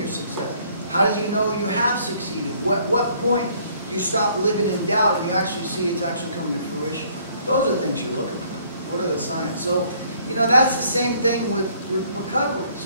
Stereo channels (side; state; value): both; inverted; correlation -0.62